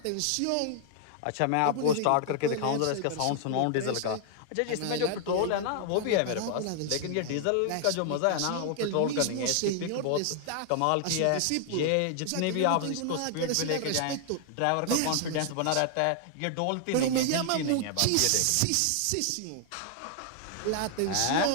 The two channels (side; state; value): both; different; correlation 0.00